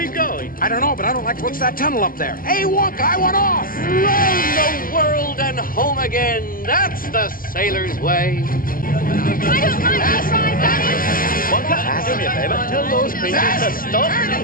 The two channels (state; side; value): late; right; 0.41 ms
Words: going? I don't know, but I don't like to look at that tunnel up there. Hey, Wonka, I want off! Round the world and home again. That's the sailor's way. I don't like to try, Daddy. Wonka, do me a favor. Tell those creatures to stop